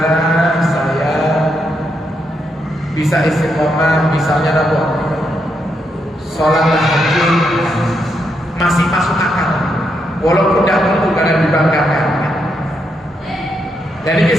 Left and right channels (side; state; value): both; normal; correlation 0.80